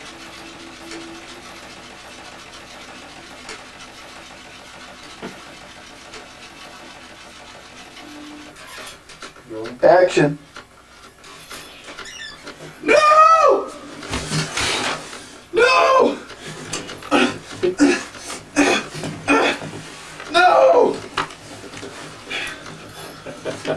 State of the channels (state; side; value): identical; both; correlation 1.00